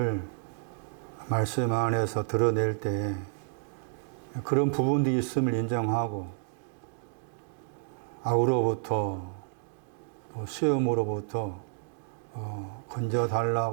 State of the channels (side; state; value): left; silent; digital silence